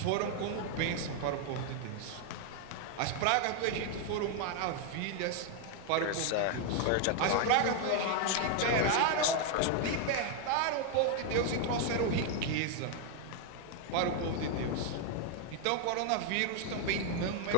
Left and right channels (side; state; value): both; different; correlation 0.00